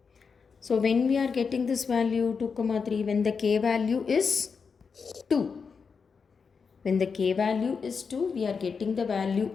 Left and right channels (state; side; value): quieter; right; 5.5 dB